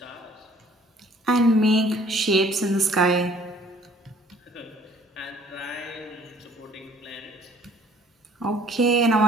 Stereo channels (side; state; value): both; normal; correlation 0.56